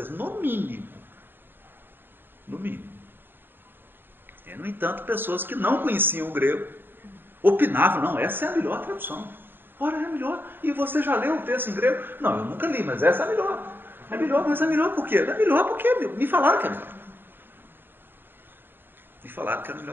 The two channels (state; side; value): late; left; 0.097 ms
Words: No mínimo. No mínimo. No entanto, pessoas que não conheciam o grego opinavam, não, essa é a melhor tradução. Ora, é a melhor. E você já leu o texto em grego? Não, eu nunca li, mas essa é a melhor. É melhor, mas é melhor por quê? É melhor porque me falaram que é melhor. Me falaram que era a